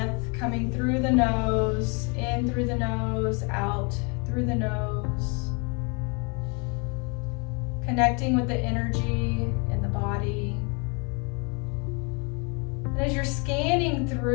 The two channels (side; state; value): right; quieter; 33.3 dB